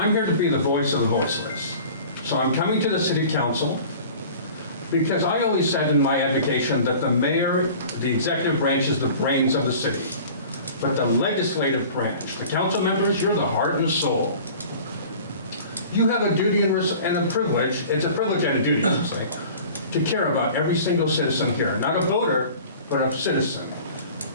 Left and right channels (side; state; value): both; inverted; correlation -0.43